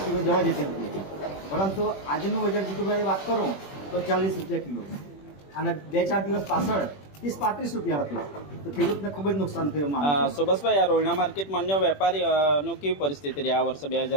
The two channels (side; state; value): right; late; 21 ms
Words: કિલો જવા જતી હતી, પરંતુ આજનું બજાર જીતુભાઈ વાત કરું તો 40 રૂપિયા કિલો અને 2-4 દિવસ પાછળ 30-35 રૂપિયા હતું, તો ખેડૂતને ખૂબ જ નુકસાન થયું. સુભાષભાઈ, આ રોહિણા માર્કેટમાં અન્ય વેપારીનું કેવી પરિસ્થિતિ રહી આ વર્ષે